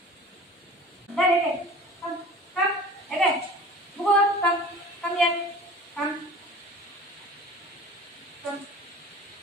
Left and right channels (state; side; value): normal; both; correlation 0.41